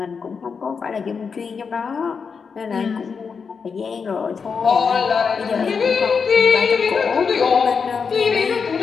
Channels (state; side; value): quieter; right; 5.7 dB